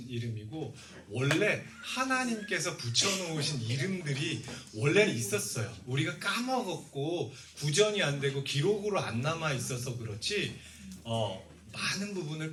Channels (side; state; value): both; identical; correlation 1.00